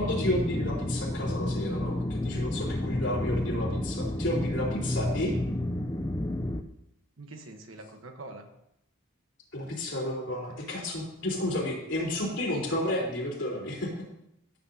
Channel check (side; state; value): both; normal; correlation 0.53